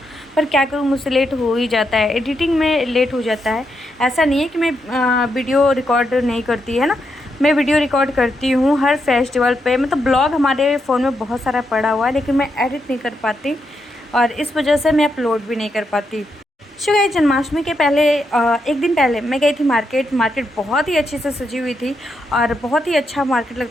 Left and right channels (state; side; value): normal; both; correlation 0.82